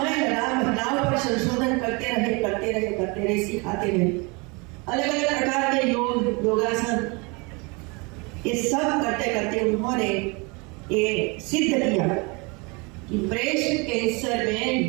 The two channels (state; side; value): quieter; left; 29.0 dB